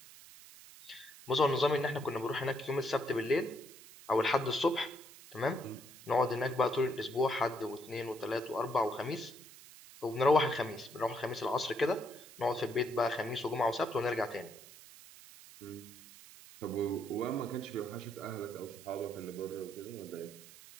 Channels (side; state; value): right; noise; hiss, 19 dB below the sound